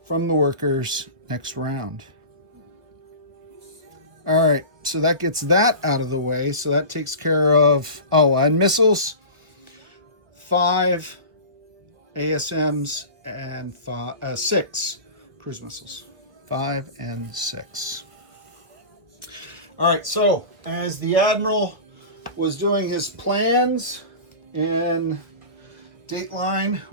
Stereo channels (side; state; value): left; late; 1.3 ms